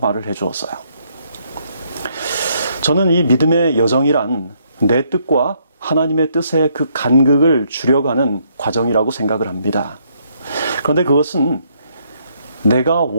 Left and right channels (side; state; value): both; inverted; correlation -0.71